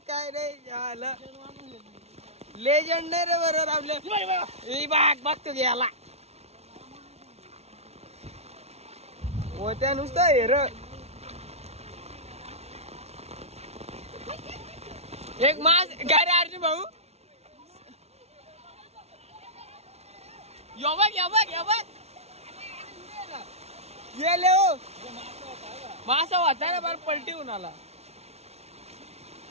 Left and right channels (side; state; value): left; late; 0.31 ms